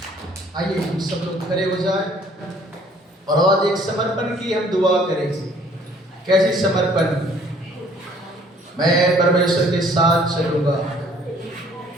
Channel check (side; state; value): both; normal; correlation 0.58